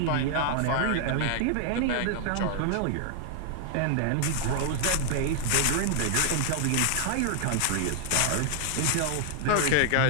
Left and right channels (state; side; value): different; both; correlation 0.00